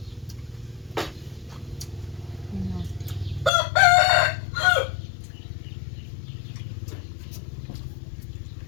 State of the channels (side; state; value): right; drops out; at 3.5 s